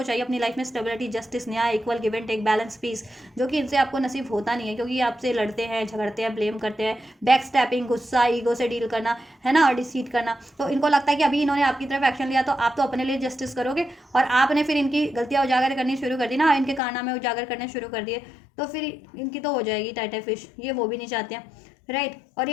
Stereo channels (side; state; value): right; drops out; at 16.8 s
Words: चाहिए अपनी लाइफ में स्टेबिलिटी, जस्टिस, न्याय, equal give and take, balance, peace, जो कि इनसे आपको नसीब होता नहीं है, क्योंकि ये आपसे लड़ते हैं, झगड़ते हैं, ब्लेम करते हैं, बैक स्टैपिंग, गुस्सा, ईगो से डील करना, है ना, और डिसीट करना। तो इनको लगता है कि अभी इन्होंने आपकी तरफ एक्शन लिया तो आप तो अपने लिए जस्टिस करोगे, और आपने फिर इनकी गलतियां उजागर करनी शुरू कर दी ना, इनके कारनामे उजागर करने शुरू कर दिए, तो फिर इनकी तो हो जाएगी टाइटा फिश, ये वो भी नहीं चाहते हैं, राइट। और